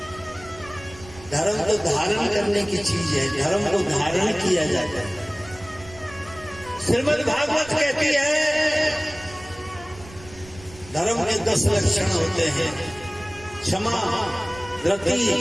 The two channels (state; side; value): noise; right; rumble, 19 dB below the sound